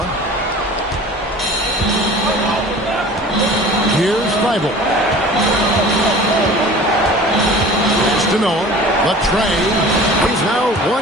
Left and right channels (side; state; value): both; normal; correlation 0.42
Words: Here's Thybulle. Pass to Noah. Latrey. He's now